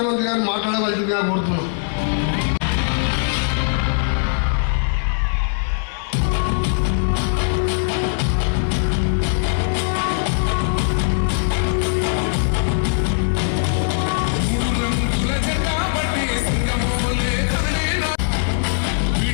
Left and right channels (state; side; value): silent; right; digital silence